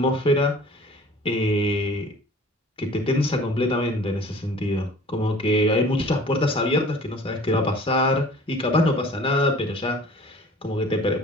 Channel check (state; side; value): normal; both; correlation 0.47